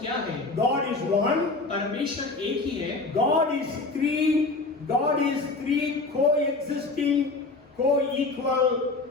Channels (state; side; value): quieter; right; 3.5 dB